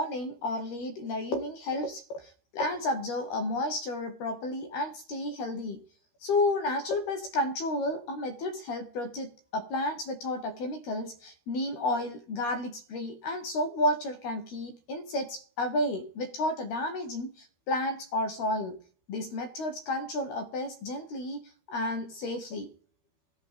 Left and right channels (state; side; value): late; right; 13 ms